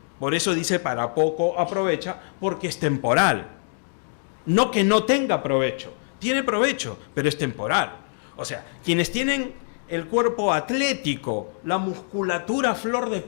por eso dice para poco aprovecha, porque es temporal. No que no tenga provecho, tiene provecho, pero es temporal. O sea, quienes tienen el cuerpo atlético, la musculatura a flor de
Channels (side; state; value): right; silent; digital silence